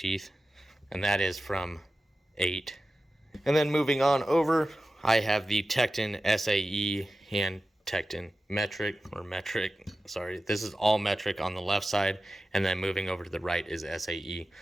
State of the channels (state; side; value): normal; both; correlation 0.94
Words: And that is from 8. And then moving on over, I have the Tekton SAE and Tekton metric. Sorry, this is all metric on the left side, and then moving over to the right is SAE.